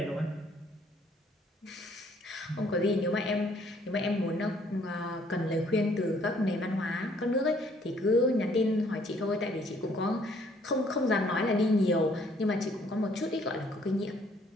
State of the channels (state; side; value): normal; both; correlation 0.63